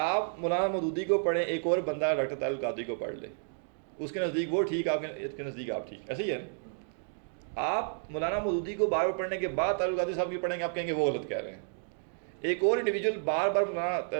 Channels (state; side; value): silent; left; digital silence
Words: مولانا مودودی کو پڑھیں، ایک اور بندہ ڈاکٹر طاہر القادری کو پڑھ لے، اس کے نزدیک وہ ٹھیک، آپ کے نزدیک آپ ٹھیک. ایسے ہی ہے نا؟ آپ مولانا مودودی کو بار بار پڑھنے کے بعد طاہر القادری صاحب کی پڑھیں گے، آپ کہیں گے وہ غلط کہہ رہے ہیں. ایک اور انڈیویجول بار بار مولانا